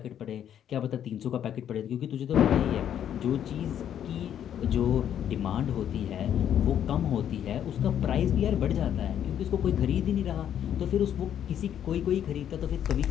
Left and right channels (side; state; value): right; quieter; 9.8 dB